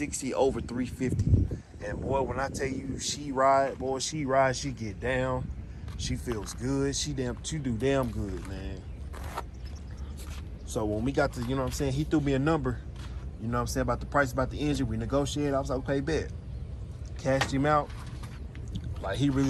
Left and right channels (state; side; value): identical; both; correlation 1.00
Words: over 350. And boy, when I tell you she ride, she get down. She feels good. She do damn good, man. So when we got to, you know what I'm saying, he threw me a number, you know what I'm saying, about the price, about the engine. We negotiated. I was like, okay, bet. Cashed him out. Like, he